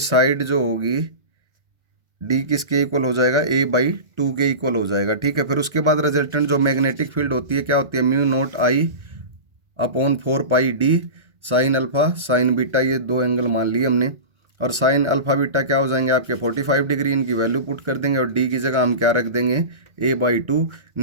साइड जो होगी D किसके इक्वल हो जाएगा, A/2 के इक्वल हो जाएगा। ठीक है, फिर उसके बाद रिजल्टेंट जो मैग्नेटिक फील्ड होती है क्या होती है, μ0I/4πD sine alpha sign beta, ये दो एंगल मान लिए हमने, और साइन अल्फा बीटा क्या हो जाएंगे आपके 45 डिग्री, इनकी वैल्यू पुट कर देंगे, और D की जगह हम क्या रख देंगे, A/2।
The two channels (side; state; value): left; late; 1.4 ms